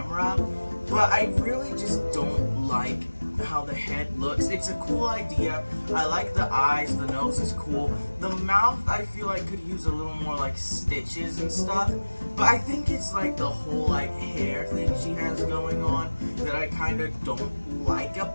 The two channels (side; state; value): both; inverted; correlation -1.00